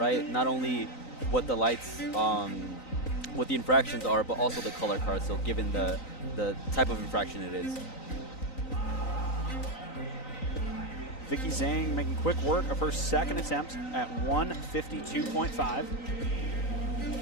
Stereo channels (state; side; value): late; right; 3.9 ms